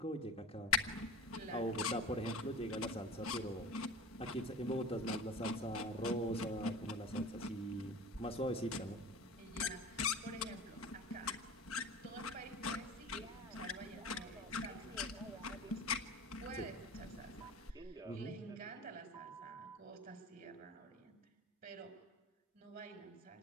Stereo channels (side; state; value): both; normal; correlation 0.34